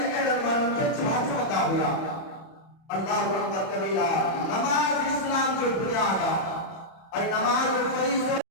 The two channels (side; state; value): right; late; 31 ms